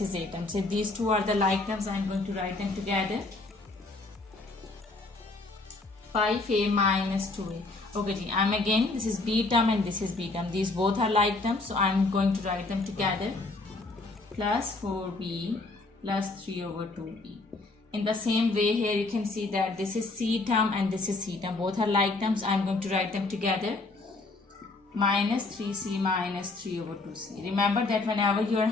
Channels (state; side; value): quieter; right; 3.3 dB